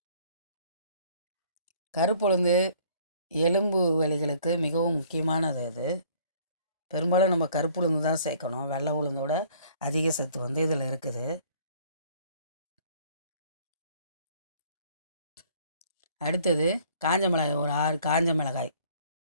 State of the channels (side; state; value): both; inverted; correlation -0.57